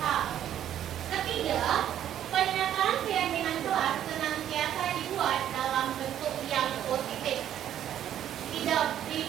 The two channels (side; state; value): left; quieter; 10.9 dB